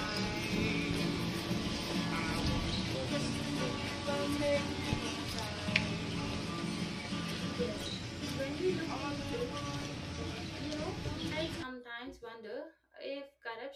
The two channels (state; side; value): identical; both; correlation 1.00